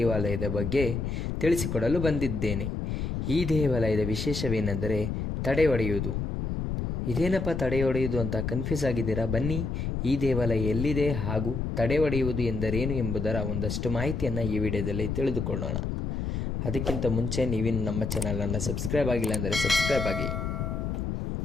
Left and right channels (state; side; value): noise; left; rumble, 2 dB below the sound